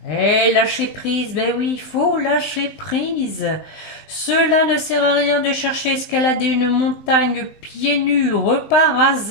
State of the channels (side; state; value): right; late; 19 ms